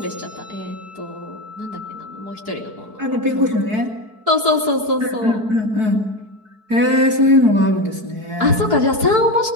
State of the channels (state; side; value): late; left; 4.6 ms